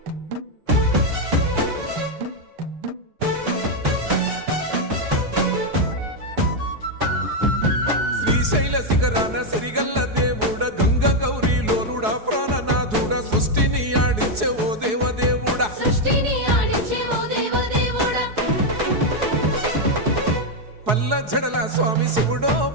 శ్రీశైల శిఖరాన సిరిగల్ల దేవుడ గంగ గౌరీ లోలుడా ప్రాణనాథుడా సృష్టిని ఆడించే ఓ దేవదేవుడా సృష్టిని ఆడించే ఓ దేవదేవుడా పల్ల జడల స్వామి శివుడో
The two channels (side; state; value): left; late; 4.7 ms